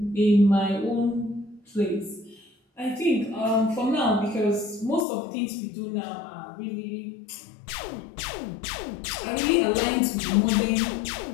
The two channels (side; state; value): right; drops out; at 5.1 s